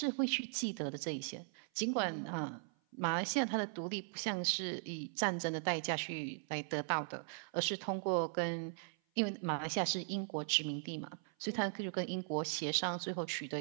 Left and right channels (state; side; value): silent; left; 52 dB below the other